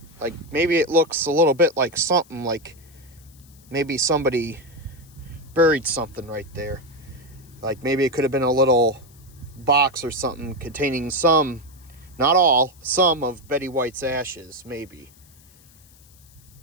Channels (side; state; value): left; noise; hiss, 27 dB below the sound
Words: Like maybe it looks a little bit like something, like maybe somebody buried something right there. Like maybe it could have been a little box or something containing some, not all, some of Betty White's ashes, maybe.